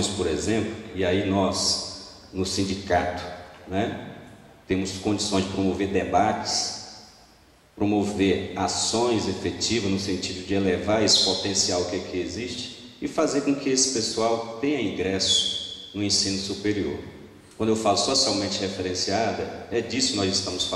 por exemplo, e aí nós, no sindicato, né, temos condições de promover debates, promover ações efetivas no sentido de elevar esse potencial que aqui existe e fazer com que esse pessoal tenha ingresso no ensino superior. Quando eu falo socialmente referenciada, é disso que nós estamos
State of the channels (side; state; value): both; identical; correlation 1.00